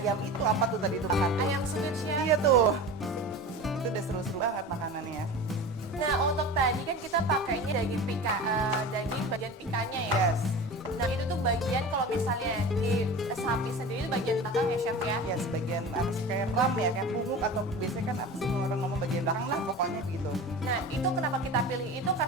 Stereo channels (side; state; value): both; normal; correlation 0.33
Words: itu apa tuh tadi itu makan? Ayam suwir Chef. Iya tuh. Itu udah seru-seru banget makanannya ya. Nah untuk tadi kan kita pakainya daging daging bagian pikanya ya. Yes. Nah itu tuh bagian kalau misalnya di sapi sendiri itu bagian belakang ya Chef ya. Yes, bagian apa sih kayak ram ya, kayak punggung atau biasanya kan apa sih orang ngomong bagian belakang lah pokoknya gitu. Nah itu kenapa kita pilih itu